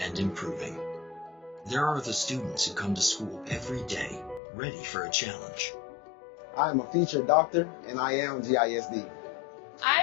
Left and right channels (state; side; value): drops out; right; at 4.4 s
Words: improving. There are the students who come to school every day, ready for a challenge. I am a future doctor, and I am GISD.